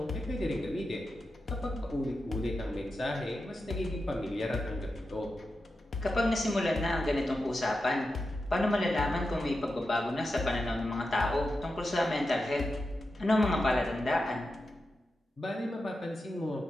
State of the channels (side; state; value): both; normal; correlation 0.90